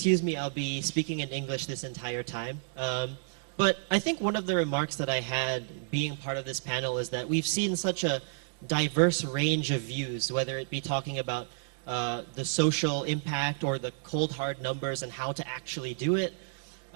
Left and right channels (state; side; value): silent; left; digital silence